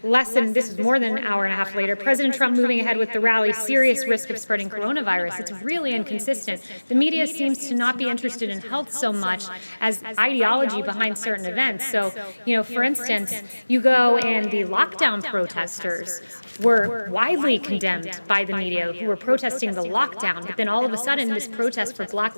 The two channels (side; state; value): both; inverted; correlation -1.00